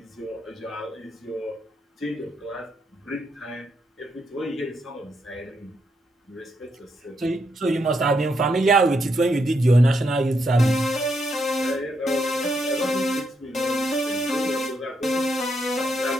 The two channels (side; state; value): both; normal; correlation 0.79